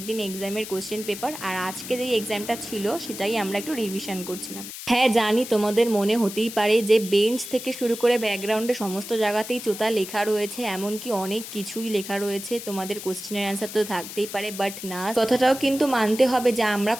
দিন এক্সামের কোশ্চেন পেপার, আর আজকে যেই এক্সামটা ছিল সেটাই আমরা একটু রিভিশন করছিলাম। হ্যাঁ জানি, তোমাদের মনে হতেই পারে যে বেঞ্চ থেকে শুরু করে ব্যাকগ্রাউন্ডে সমস্ত জায়গাতেই চোতা লেখা রয়েছে, এমনকি অনেক কিছুই লেখা রয়েছে, তোমাদের কোশ্চেনের অ্যান্সার তো থাকতেই পারে, বাট না, কথাটাও কিন্তু মানতে হবে যে আমরা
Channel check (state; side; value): noise; left; hiss, 11 dB below the sound